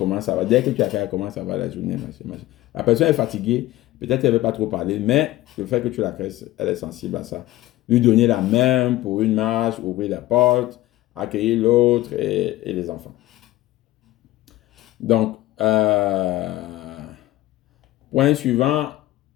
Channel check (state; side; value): quieter; right; 16.5 dB